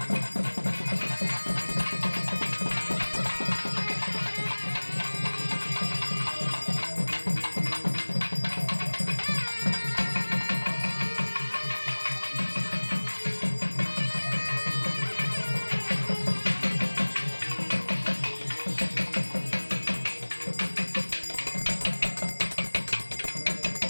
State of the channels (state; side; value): inverted; both; correlation -1.00